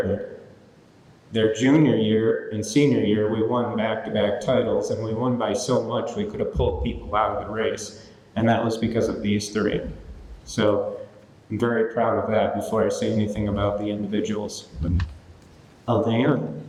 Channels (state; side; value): identical; both; correlation 1.00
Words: Their junior year and senior year, we won back-to-back titles, and we won by so much we could have pulled people out of the race. And that was because of these 3. So I'm very proud of that before I say anything about the individuals. Alana.